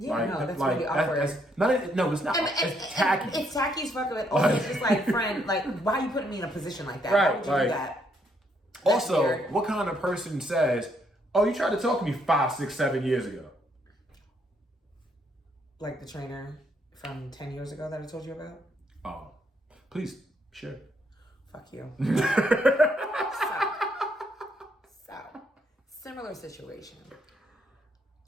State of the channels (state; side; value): normal; both; correlation 0.72